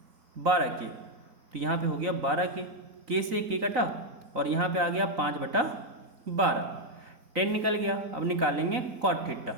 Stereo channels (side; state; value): left; late; 3.9 ms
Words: 12k, तो यहाँ पे हो गया 12k, k से k कटा और यहाँ पे आ गया 5/12, 10 निकल गया। अब निकालेंगे कॉट थीटा।